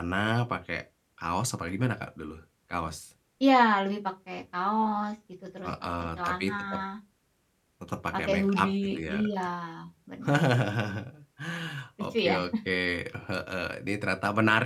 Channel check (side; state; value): both; identical; correlation 1.00